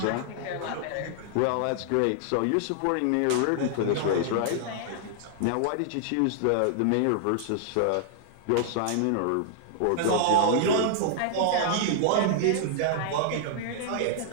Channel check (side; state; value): both; different; correlation -0.01